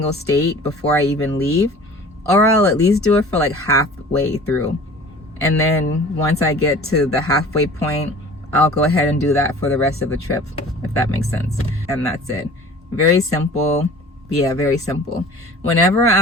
state before I even leave, or I'll at least do it for like halfway through. And then once I get to the halfway point, I'll go ahead and do that for the rest of the trip, if that makes sense. And that's it. Very simple. Yeah, very simple. Whenever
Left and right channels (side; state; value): both; normal; correlation 0.44